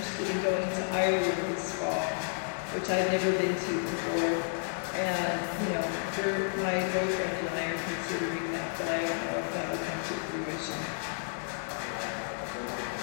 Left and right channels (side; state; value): right; silent; digital silence